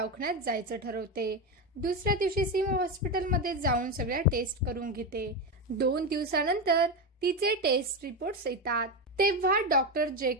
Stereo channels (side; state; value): both; normal; correlation 0.14